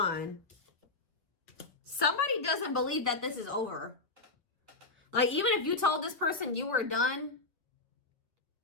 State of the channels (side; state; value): right; quieter; 3.3 dB